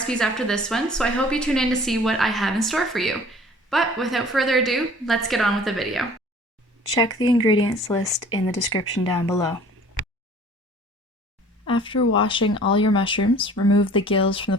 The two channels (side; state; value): both; normal; correlation 0.50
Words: after this one, so I hope you tune in to see what I have in store for you. But without further ado, let's get on with the video. Check the ingredients list in the description down below. After washing all your mushrooms, remove the gills from the